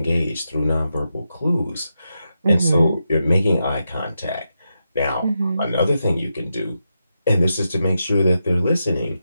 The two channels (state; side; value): inverted; both; correlation -0.87